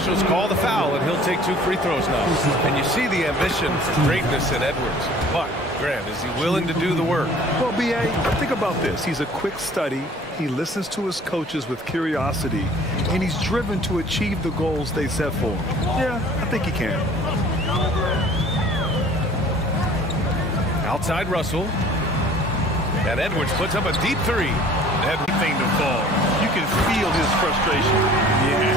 call the foul, and he'll take 2 free throws now. And you see the ambition for greatness in Edwards. But, Grant, is he willing to do the work? Well, B.A., think about this. He's a quick study. He listens to his coaches with curiosity, and he's driven to achieve the goals they set for him. Yeah, I think he can. Outside Russell. And Edwards puts up a deep 3. Everything to fall. You can feel his frustration.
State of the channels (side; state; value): both; normal; correlation 0.50